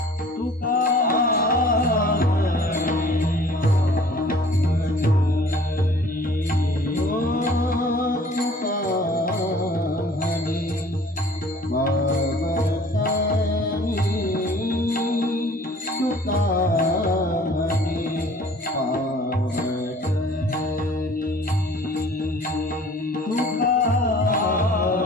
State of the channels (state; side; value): normal; both; correlation 0.50